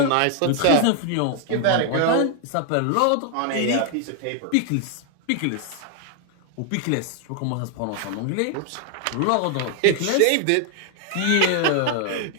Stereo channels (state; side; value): different; both; correlation 0.00